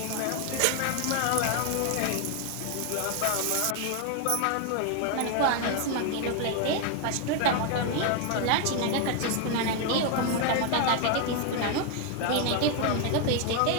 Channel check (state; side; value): different; both; correlation 0.00